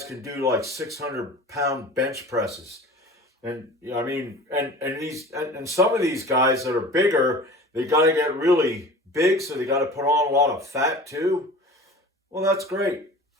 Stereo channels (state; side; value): normal; both; correlation 0.39